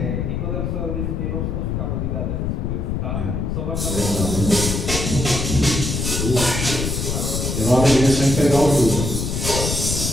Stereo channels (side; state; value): left; noise; rumble, 1 dB below the sound